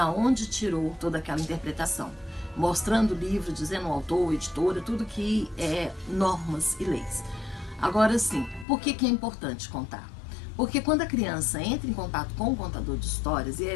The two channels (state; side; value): drops out; right; at 8.7 s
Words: onde tirou toda aquela interpretação, mostrando o livro, dizendo o autor, editora, tudo que é normas e leis. Agora sim, por que é importante contar? Porque quando a criança entra em contato com o contador de histórias e